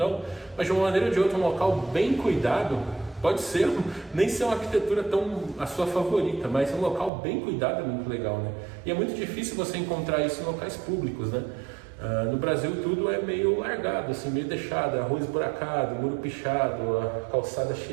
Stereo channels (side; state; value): left; drops out; at 7.1 s